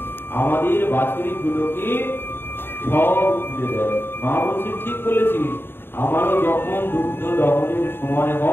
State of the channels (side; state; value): right; late; 0.10 ms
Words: আমাদের বাছুরিগুলোকে সব খুলে দেয়। মা বলছে ঠিক বলেছিস, আমারও যখন দুগ্ধ দহনের সময়